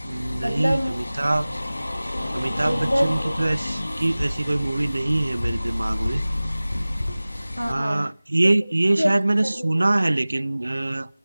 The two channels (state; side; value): inverted; both; correlation -0.99